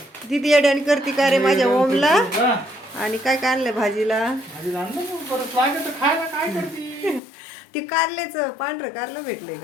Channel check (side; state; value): right; drops out; at 7.2 s